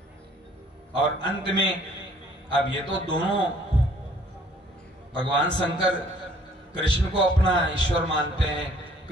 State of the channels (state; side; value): normal; both; correlation 0.58